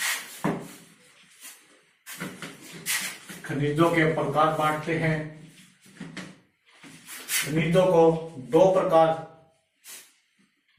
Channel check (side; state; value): both; identical; correlation 1.00